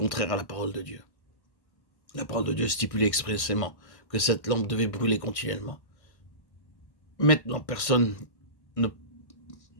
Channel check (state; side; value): late; right; 1.6 ms